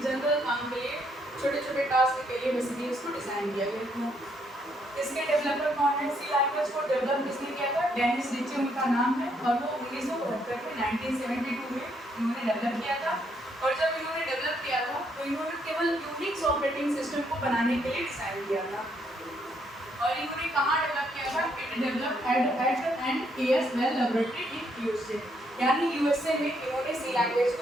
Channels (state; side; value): normal; both; correlation 0.73